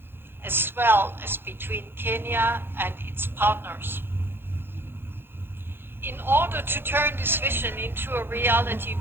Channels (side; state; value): left; late; 0.10 ms